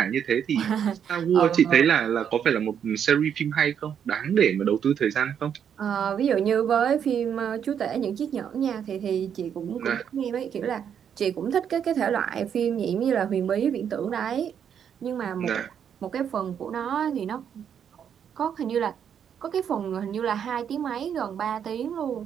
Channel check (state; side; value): quieter; left; 8.3 dB